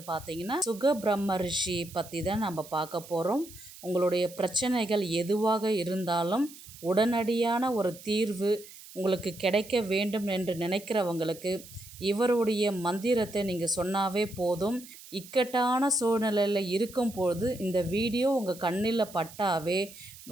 பார்த்தீங்கன்னா, சுக பிரம்ம ரிஷி பற்றி தான் நம்ம பார்க்க போகிறோம். உங்களுடைய பிரச்சனைகள் எதுவாக இருந்தாலும் உடனடியான ஒரு தீர்வு உங்களுக்கு கிடைக்க வேண்டும் என்று நினைக்கிறவங்களுக்கு இவருடைய மந்திரத்தை நீங்கள் சொன்னாவே போதும். இக்கட்டான சூழ்நிலையில் இருக்கும்போது இந்த வீடியோ உங்கள் கண்ணில் பட்டாவே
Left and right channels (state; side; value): noise; right; hiss, 18 dB below the sound